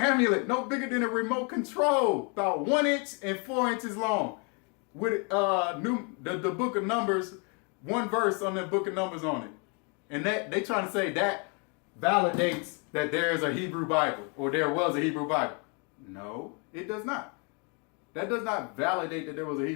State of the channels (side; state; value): right; quieter; 34.9 dB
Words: no bigger than a remote control. About 1 inch and 4 inches long. With the book of Numbers, one verse on the book of Numbers on it. And that they trying to say that validates that there is a Hebrew Bible or there was a Hebrew Bible. No, it does not. That does not validate that there was a